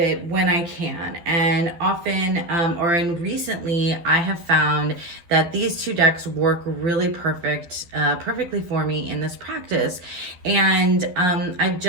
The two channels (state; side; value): late; left; 12 ms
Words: when I can. And often, recently, I have found that these two decks work really perfectly for me in this practice. And I've